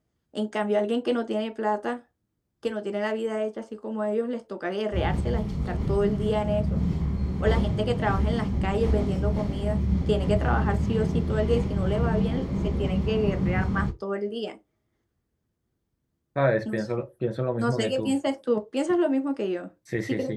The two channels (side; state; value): both; identical; correlation 1.00